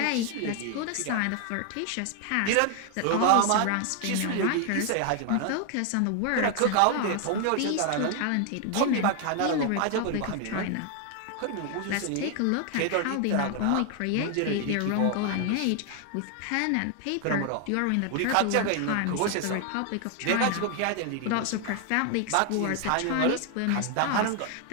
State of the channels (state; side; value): different; both; correlation 0.00